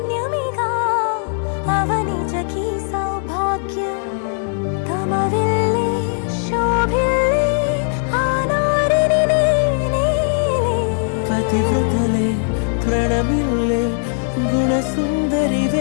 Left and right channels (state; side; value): silent; right; 58 dB below the other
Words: అవనిజకి సౌభాగ్యం తమ విల్లే శోభిల్లే ఆనారిని నేనే పతివ్రతలే ప్రణమిల్లే